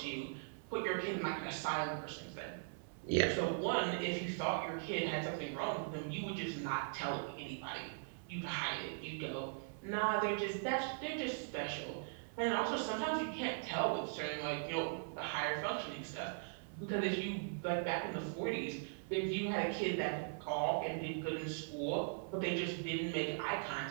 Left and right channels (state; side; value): silent; left; 51 dB below the other